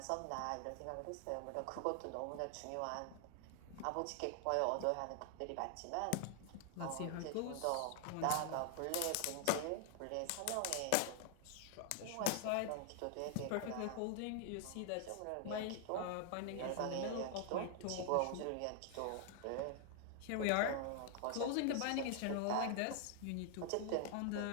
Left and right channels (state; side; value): different; both; correlation 0.00